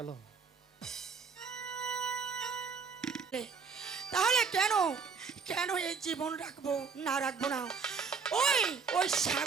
তাহলে কেন কেন এই জীবন রাখবো না রাখবো না? ওই ওই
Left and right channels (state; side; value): quieter; left; 5.6 dB